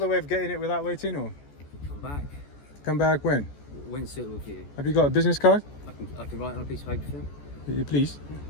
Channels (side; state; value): right; late; 14 ms